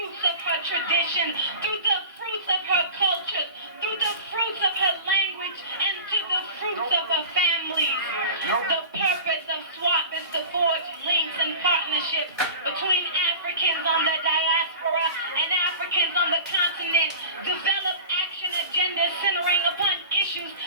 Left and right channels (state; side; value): inverted; both; correlation -0.36